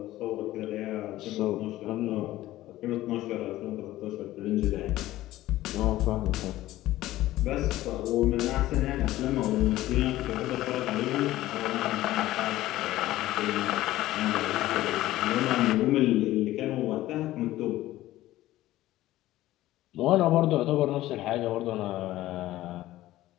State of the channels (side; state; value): right; quieter; 15.6 dB